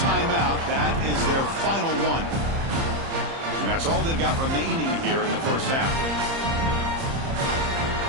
That is their final one. And that's all they've got remaining here in the first half.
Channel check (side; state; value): left; late; 30 ms